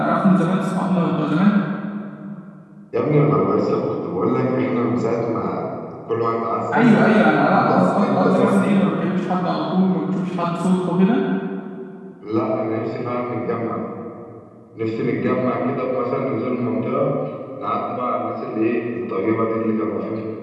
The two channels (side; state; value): both; identical; correlation 1.00